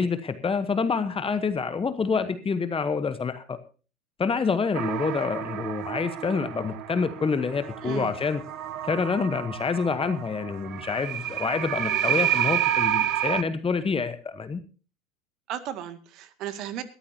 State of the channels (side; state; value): both; normal; correlation 0.49